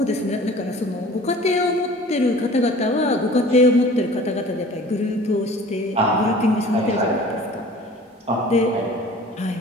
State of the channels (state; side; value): normal; both; correlation 0.45